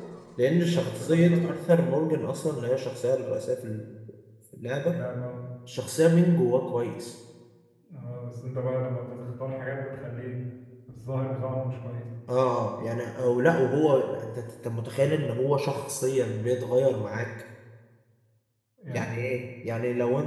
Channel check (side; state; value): both; identical; correlation 1.00